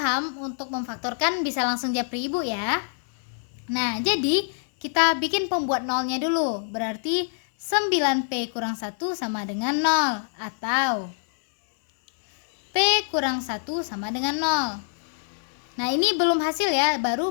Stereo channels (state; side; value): silent; right; 61 dB below the other